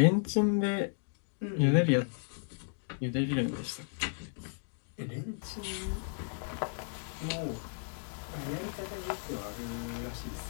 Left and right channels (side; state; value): right; silent; digital silence